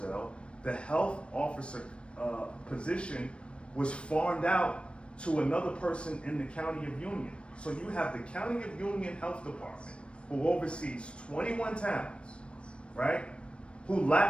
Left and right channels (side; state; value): right; late; 0.058 ms